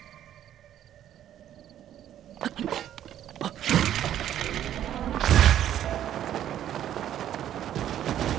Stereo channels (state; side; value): quieter; left; 11.1 dB